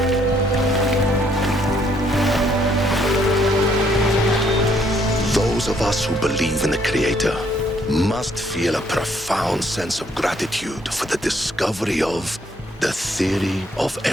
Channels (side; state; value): both; normal; correlation 0.67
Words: Those of us who believe in the Creator must feel a profound sense of gratitude for the discovery of the theory of